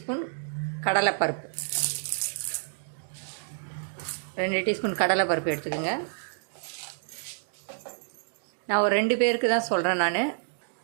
கடலைப்பருப்பு, 2 டீஸ்பூன் கடலைப்பருப்பு எடுத்துக்கோங்க. நான் ஒரு 2 பேருக்கு தான் சொல்கிறேன். நான்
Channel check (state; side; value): silent; left; digital silence